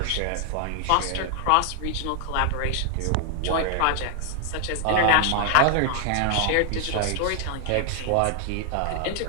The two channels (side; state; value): both; different; correlation 0.00